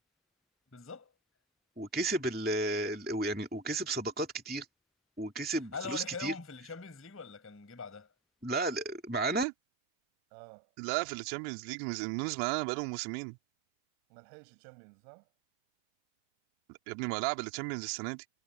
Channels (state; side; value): drops out; left; at 9.5 s